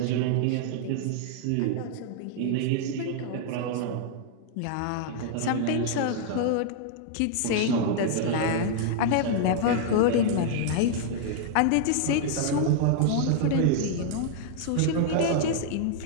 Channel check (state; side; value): different; both; correlation -0.01